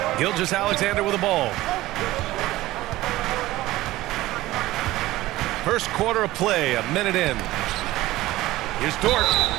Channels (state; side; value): quieter; left; 17.1 dB